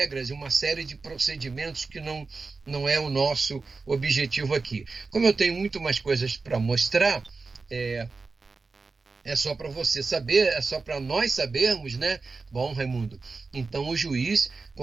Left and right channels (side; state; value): left; quieter; 4.1 dB